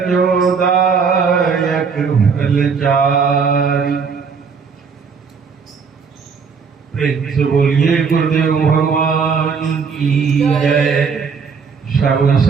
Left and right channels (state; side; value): quieter; left; 5.7 dB